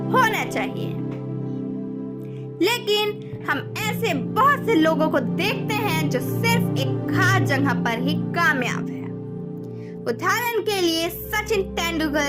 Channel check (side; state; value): both; identical; correlation 1.00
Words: होना चाहिए। लेकिन हम ऐसे बहुत से लोगों को देखते हैं जो सिर्फ एक खास जगह पर ही कामयाब है। उदाहरण के लिए सचिन